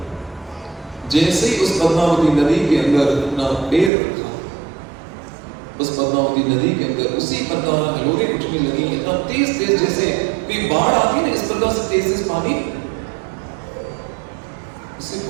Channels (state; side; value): drops out; left; at 3.9 s